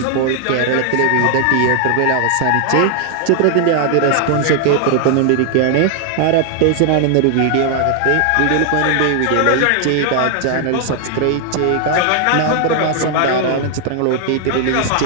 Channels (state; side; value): different; both; correlation 0.00